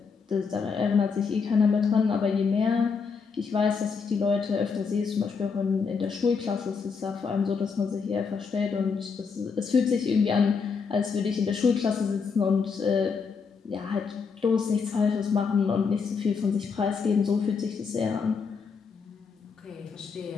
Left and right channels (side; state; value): right; quieter; 5.5 dB